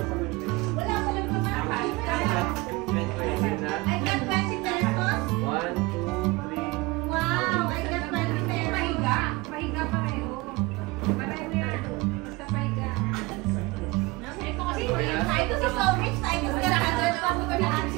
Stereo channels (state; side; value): quieter; left; 22.7 dB